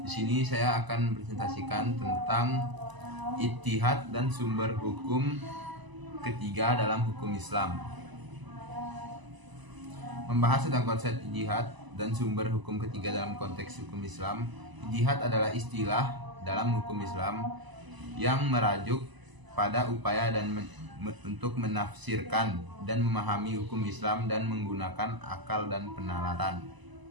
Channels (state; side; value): late; left; 1.0 ms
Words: Di sini saya akan presentasikan tentang ijtihad dan sumber hukum ketiga dalam hukum Islam. Membahas tentang konsep ijtihad dan sumber hukum ketiga dalam konteks hukum Islam. Ijtihad adalah istilah dalam hukum Islam yang merajuk pada upaya untuk menafsirkan dan memahami hukum Islam dan menggunakan akal dan penalaran.